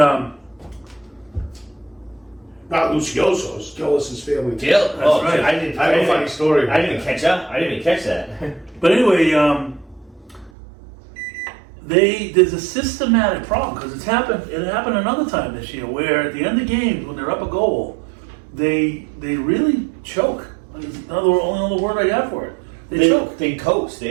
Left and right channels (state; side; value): drops out; left; at 10.5 s